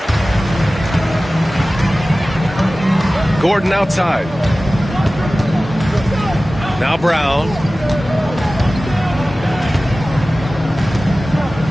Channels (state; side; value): normal; both; correlation 0.97